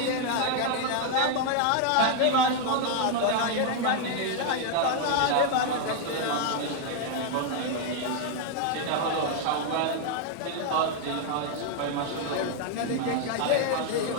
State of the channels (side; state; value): both; different; correlation 0.00